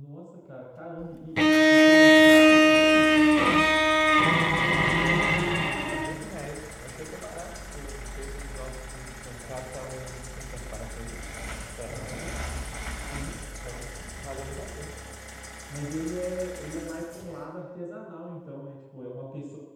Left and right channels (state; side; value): identical; both; correlation 1.00